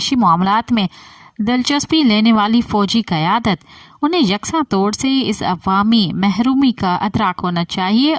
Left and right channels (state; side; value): identical; both; correlation 1.00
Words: معاملات میں دلچسپی لینے والی فوجی قیادت، انہیں یکساں طور سے اس عوامی محرومی کا ادراک ہونا چاہیے